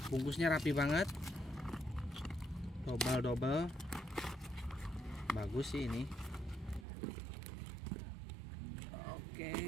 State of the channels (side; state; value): left; drops out; at 6.9 s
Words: bungkusnya rapi banget. Double. Bagus sih ini.